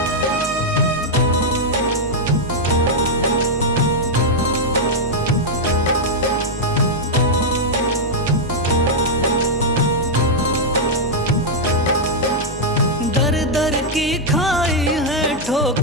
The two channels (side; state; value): both; normal; correlation -0.02